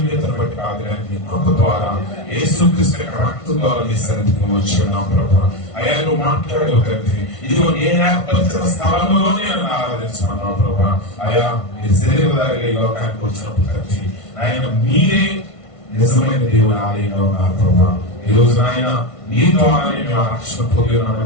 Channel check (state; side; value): late; right; 1.5 ms